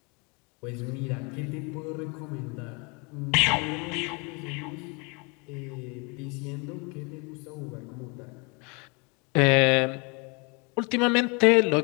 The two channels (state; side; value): quieter; right; 31.4 dB